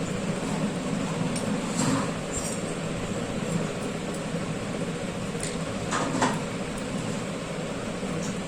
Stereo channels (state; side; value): identical; both; correlation 1.00